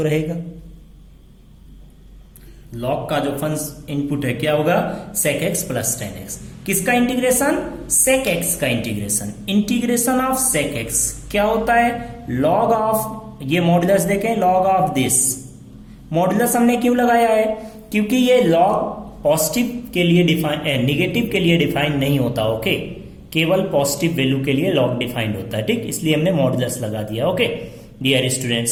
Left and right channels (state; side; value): identical; both; correlation 1.00